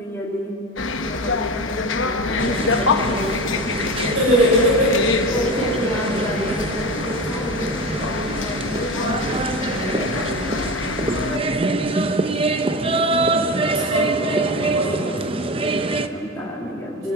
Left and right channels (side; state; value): both; normal; correlation 0.26